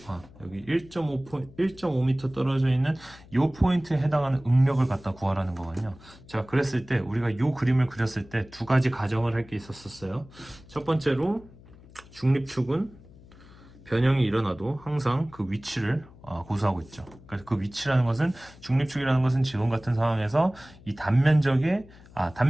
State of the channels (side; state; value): left; noise; hum, 22 dB below the sound